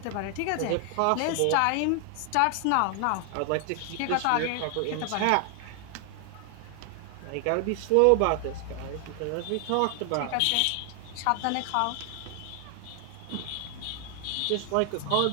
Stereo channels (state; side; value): different; both; correlation 0.00